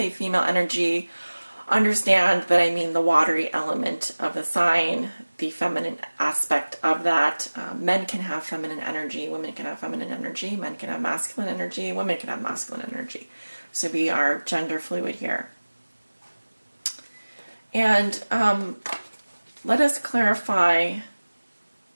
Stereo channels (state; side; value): inverted; both; correlation -1.00